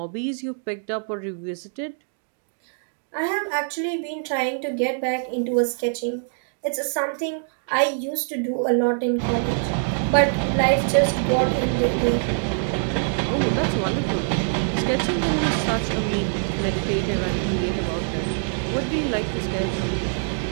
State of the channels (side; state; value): left; silent; digital silence